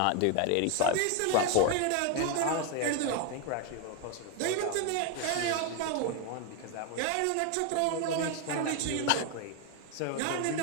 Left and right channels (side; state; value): both; different; correlation 0.01